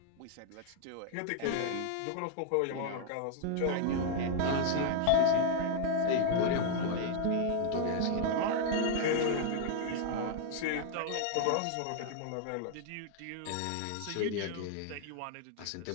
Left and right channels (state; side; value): different; both; correlation 0.00